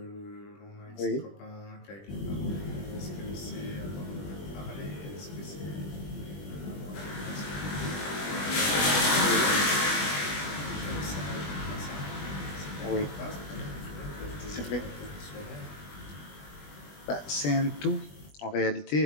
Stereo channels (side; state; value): right; late; 20 ms